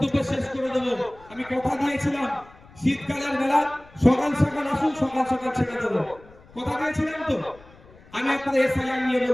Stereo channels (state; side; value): noise; left; rumble, 24 dB below the sound